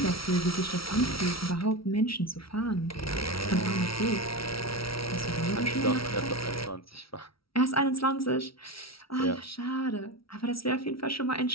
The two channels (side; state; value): right; late; 0.75 ms